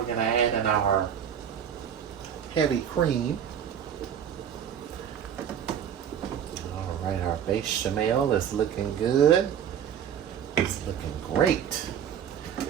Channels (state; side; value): quieter; left; 8.7 dB